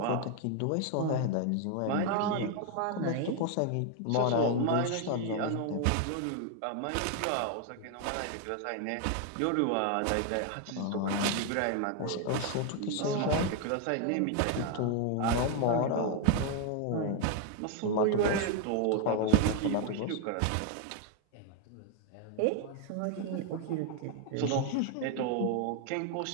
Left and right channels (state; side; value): different; both; correlation 0.01